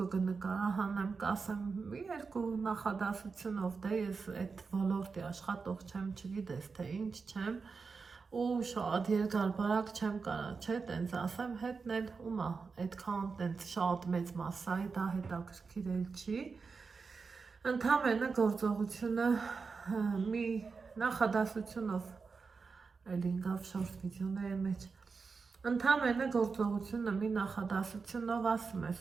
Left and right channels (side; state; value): left; quieter; 4.9 dB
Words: կնկարահանեմ, կասեմ, մի 2 նախադասությունով, դե ես այդ ոլորտի աշխատող չեմ, չգիտես, թե ինչ չեմ, ու շատ երկար բարակ չեմ կարա, չէ, տենց ասեմ, հետն էլ ումա, այդքան տենց շատ մեծ մասսայի, դա հետաքրքիր էլ չի, ընդամենը գործողությունը մի նախադասությունով, էլ ինգավ շորտ վիդեոների մեջ, ընդամենը գործողությունը մի նախադասությունով ասում ես